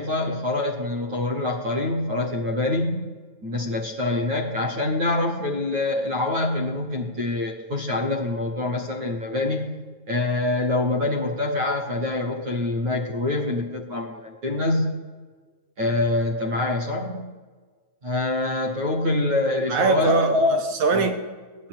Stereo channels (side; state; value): left; late; 9.3 ms